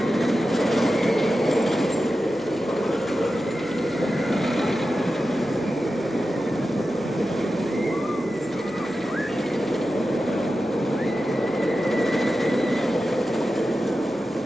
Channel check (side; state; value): left; noise; hum, 27 dB below the sound